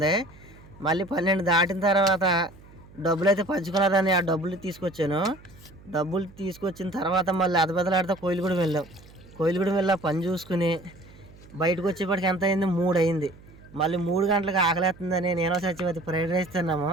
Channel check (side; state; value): right; noise; hum, 23 dB below the sound